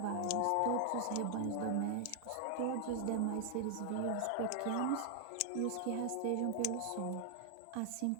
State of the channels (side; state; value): both; different; correlation 0.00